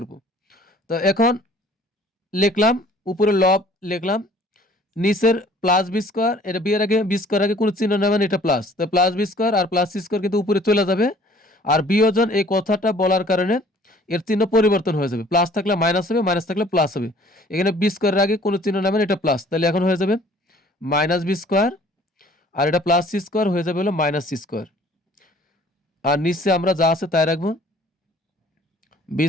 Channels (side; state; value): both; normal; correlation 0.54